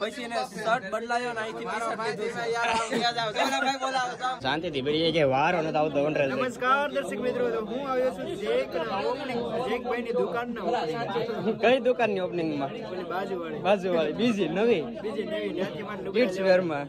પછી એને શર્ટ બદલાયો ને અહીંથી શાંતિ થી બેડી જાય વારો ન આવતો. નમસ્કાર દર્શક મિત્રો, હું આવ્યો છું જેકભાઈ ની દુકાન ના કઈ દુકાન ની ઓપનિંગ માં? બાજુવાળી બીજી નવી કિડ્સ વેર માં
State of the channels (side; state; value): both; identical; correlation 1.00